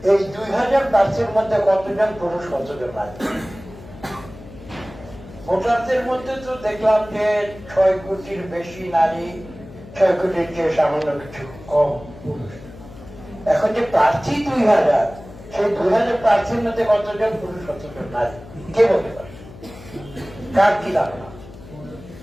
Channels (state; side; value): noise; left; hum, 17 dB below the sound